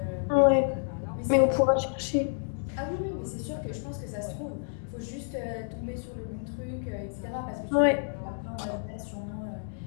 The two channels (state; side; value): silent; right; digital silence